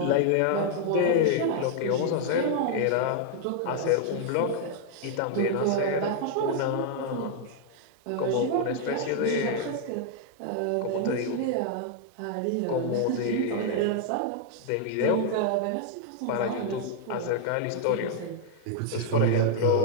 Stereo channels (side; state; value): both; different; correlation 0.00